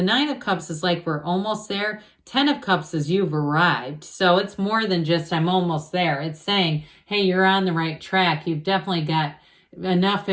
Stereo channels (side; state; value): both; identical; correlation 1.00